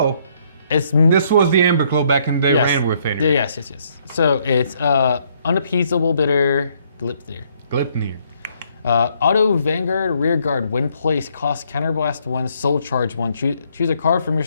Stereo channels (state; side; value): inverted; both; correlation -0.69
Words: This was the Amber Claw back in the day, ran with Fenrir. Yes. So it's Unappeasable Bitter Gleipnir. Auto Vanguard Rearguard. When placed, cost Counterblast 1, Soul Charge 1. Choose a card from your